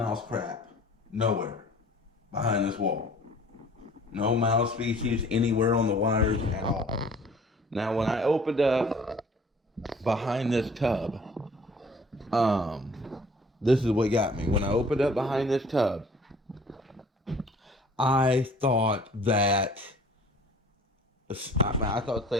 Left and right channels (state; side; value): normal; both; correlation 0.51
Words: crap. Nowhere. Behind this wall. No mouse species anywhere on the wires at all. Now when I opened up behind this tub, Um, this is what got me. When I opened up behind this tub, I thought that I thought